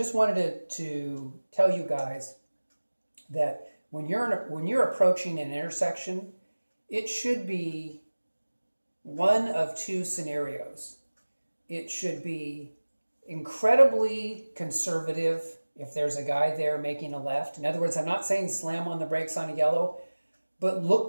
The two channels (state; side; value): inverted; both; correlation -1.00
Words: wanted to tell you guys that when you're approaching an intersection, it should be one of two scenarios. It should be incredibly conservative if there's a guy there making a left. In other words, I'm not saying slam on the brakes on a yellow, but